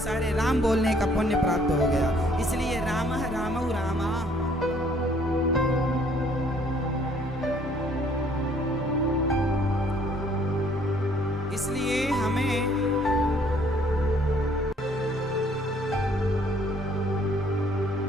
राम बोलने का पुण्य प्राप्त हो गया। इसलिए रामः, रामौ, रामाः। इसलिए हमें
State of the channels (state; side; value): normal; both; correlation 0.61